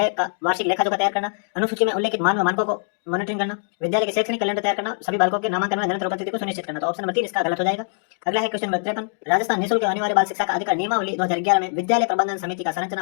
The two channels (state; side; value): silent; right; digital silence